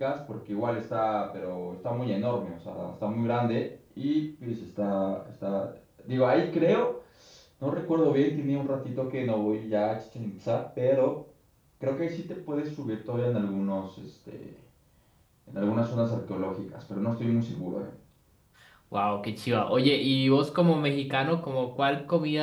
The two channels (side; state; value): both; identical; correlation 1.00